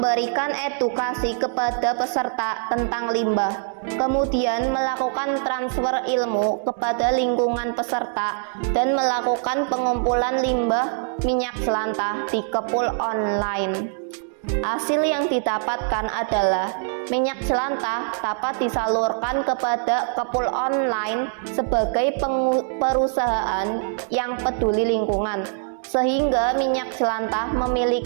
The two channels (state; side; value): silent; left; digital silence